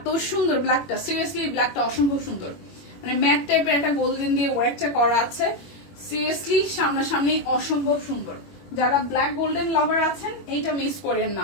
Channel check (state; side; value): late; right; 21 ms